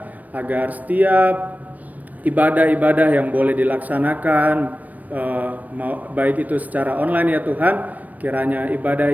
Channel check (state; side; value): late; left; 0.076 ms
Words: agar setiap ibadah-ibadah yang boleh dilaksanakan, baik itu secara online ya Tuhan, kiranya